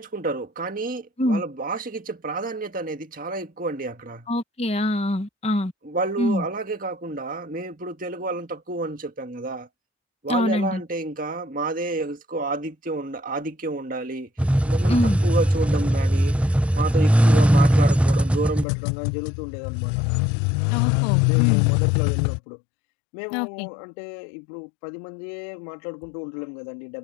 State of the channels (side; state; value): right; drops out; at 18.7 s